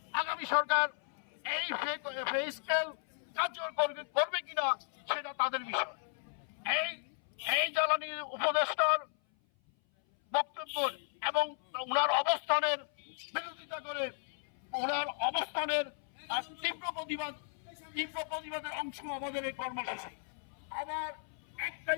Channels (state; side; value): silent; right; 54 dB below the other